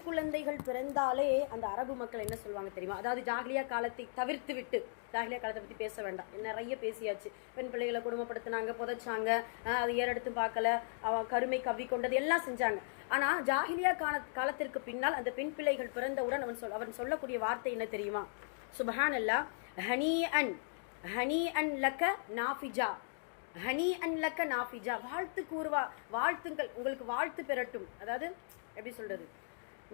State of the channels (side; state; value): right; silent; digital silence